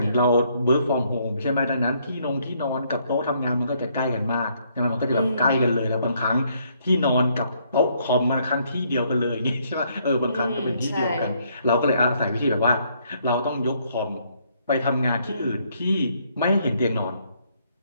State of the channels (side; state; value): both; inverted; correlation -0.70